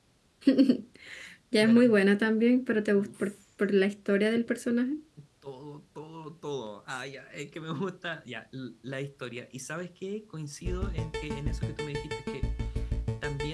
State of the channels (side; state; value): both; identical; correlation 1.00